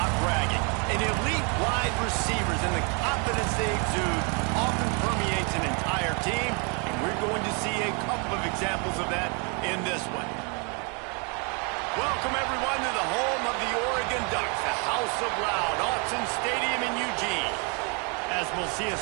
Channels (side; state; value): left; quieter; 34.4 dB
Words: bragging. An elite wide receivers and the confidence they exude often permeates an entire team, and we're going to see a couple of examples of that in this one. Welcome, everyone, to the home of the Oregon Ducks, the House of Loud, Autzen Stadium in Eugene. As we'll see a